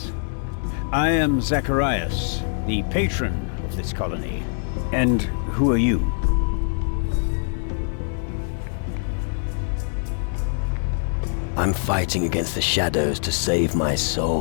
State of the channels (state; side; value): silent; right; digital silence